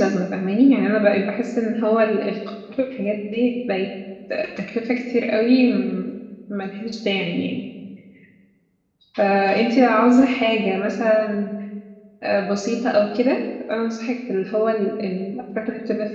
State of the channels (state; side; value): identical; both; correlation 1.00